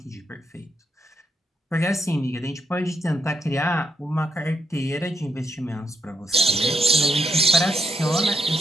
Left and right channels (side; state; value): both; normal; correlation 0.79